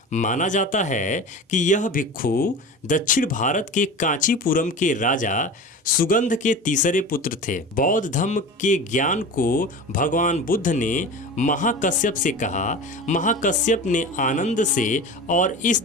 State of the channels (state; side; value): normal; both; correlation 0.32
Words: माना जाता है कि यह भिक्षु दक्षिण भारत के कांचीपुरम के राजा सुगंध के तीसरे पुत्र थे। बौद्ध धर्म के ज्ञान को भगवान बुद्ध ने महाकश्यप से कहा। महाकश्यप ने आनंद से, और इस